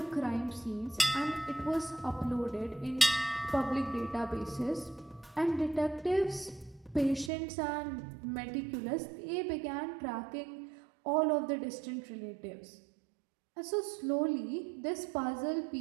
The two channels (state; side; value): drops out; left; at 7.3 s